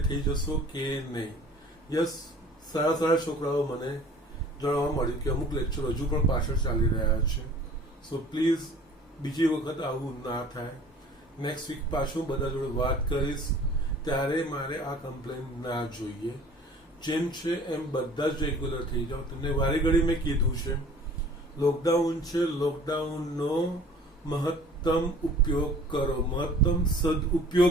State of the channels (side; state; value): both; normal; correlation 0.49